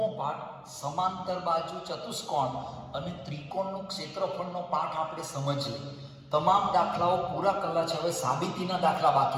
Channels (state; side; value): identical; both; correlation 1.00